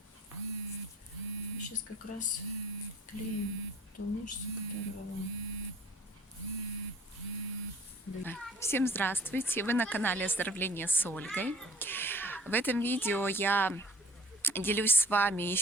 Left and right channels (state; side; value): normal; both; correlation 0.51